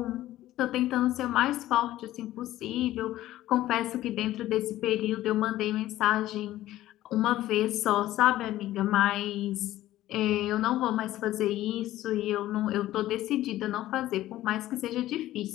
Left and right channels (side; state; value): right; quieter; 14.7 dB